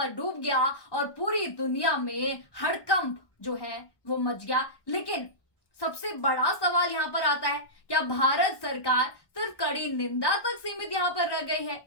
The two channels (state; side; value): late; right; 1.1 ms